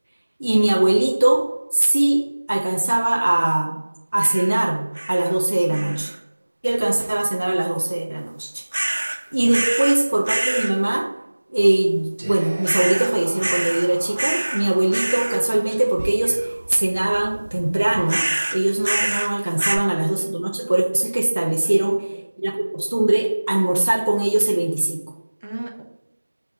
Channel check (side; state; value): both; inverted; correlation -1.00